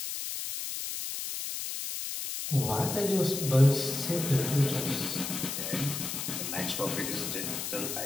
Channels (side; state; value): left; noise; hiss, 4 dB below the sound